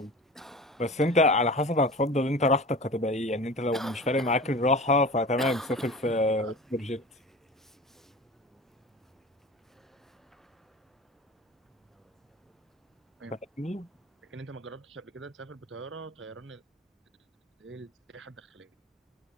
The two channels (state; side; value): normal; both; correlation 0.36